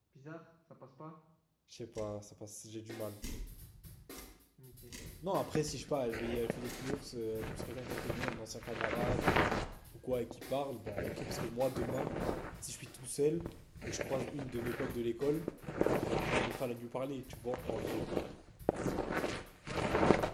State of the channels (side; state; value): both; identical; correlation 1.00